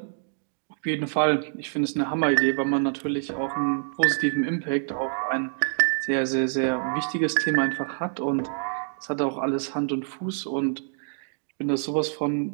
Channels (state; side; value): silent; left; digital silence